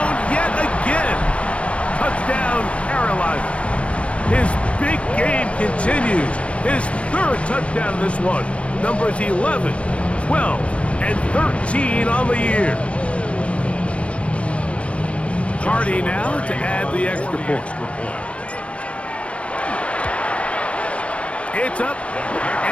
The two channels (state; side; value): late; right; 0.062 ms